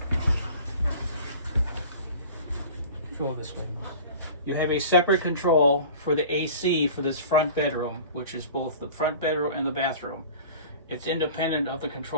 Go this way. You have a separate control for the AC for this front bedroom, which is both the front bedroom and the bathroom. It's independent of the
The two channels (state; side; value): inverted; both; correlation -0.41